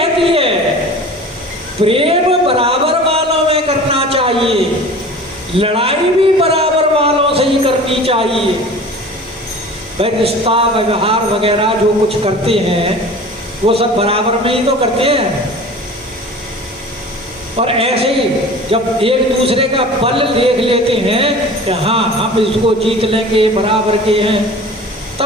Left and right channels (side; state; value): both; normal; correlation 0.40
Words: है प्रेम बराबर वालों में करना चाहिए, लड़ाई भी बराबर वालों से ही करनी चाहिए। भाई रिश्ता व्यवहार वगैरह जो कुछ करते हैं वो सब बराबर में ही तो करते हैं। और ऐसे ही जब एक दूसरे का बल देख लेते हैं कि हाँ हम इसको जीत लेंगे, बराबर के हैं,